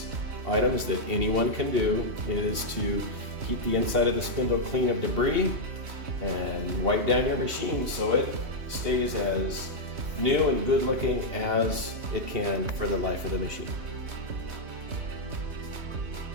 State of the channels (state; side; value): late; left; 2.7 ms